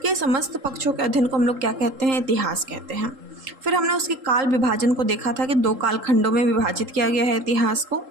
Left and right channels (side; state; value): left; late; 3.8 ms